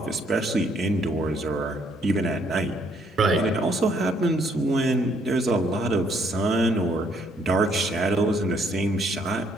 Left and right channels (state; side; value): normal; both; correlation 0.68